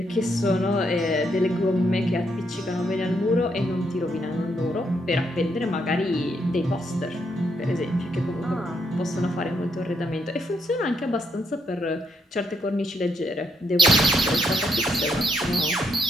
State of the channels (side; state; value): both; normal; correlation 0.76